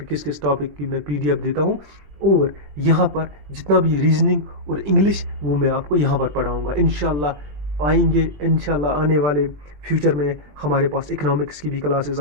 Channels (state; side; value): late; left; 21 ms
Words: किस किस टॉपिक की मैं पीडीएफ देता हूँ। और यहाँ पर जितना भी रीजनिंग और इंग्लिश वो मैं आपको यहाँ पर पढ़ाऊँगा इंशाल्लाह। आएंगे इंशाल्लाह आने वाले फ्यूचर में हमारे पास इकोनॉमिक्स की भी क्लासेस